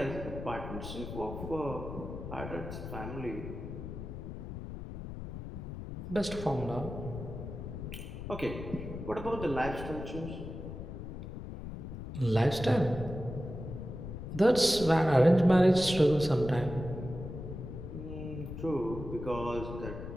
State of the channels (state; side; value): noise; left; rumble, 8 dB below the sound